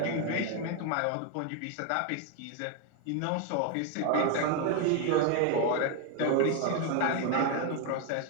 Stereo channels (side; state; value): both; different; correlation 0.01